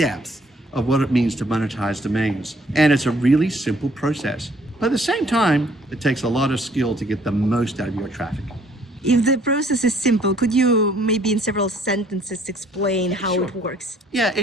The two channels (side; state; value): both; normal; correlation 0.61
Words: of what it means to monetize domains. And it's a really simple process. But at the same time, it takes a lot of skill to get the most out of your traffic. If the process is simple, could you maybe in several sentences explain how Sure. it works? Yeah,